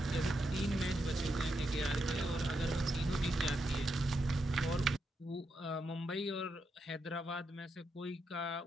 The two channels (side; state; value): both; normal; correlation 0.83